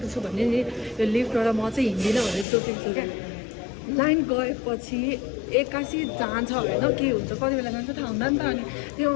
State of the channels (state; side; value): drops out; right; at 2.5 s